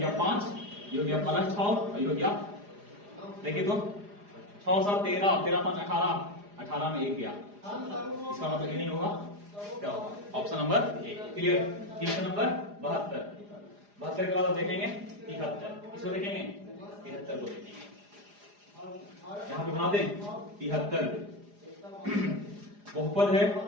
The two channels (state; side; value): late; left; 4.9 ms